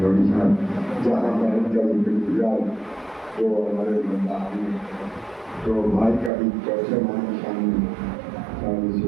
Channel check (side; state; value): left; drops out; at 6.3 s